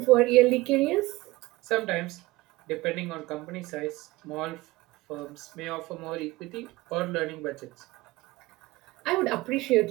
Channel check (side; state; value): left; quieter; 20.3 dB